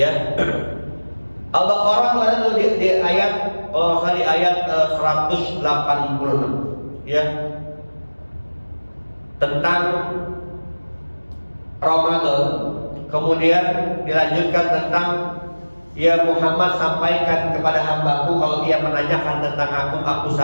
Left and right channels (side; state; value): both; inverted; correlation -1.00